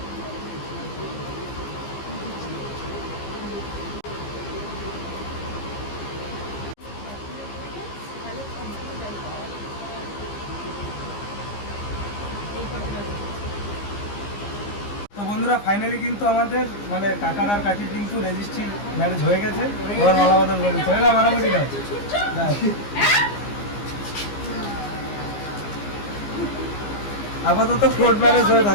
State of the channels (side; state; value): right; late; 15 ms